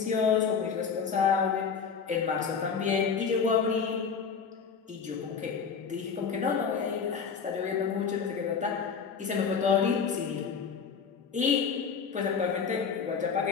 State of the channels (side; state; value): right; quieter; 6.2 dB